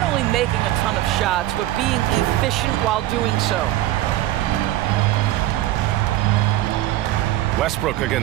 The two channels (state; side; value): quieter; left; 14.8 dB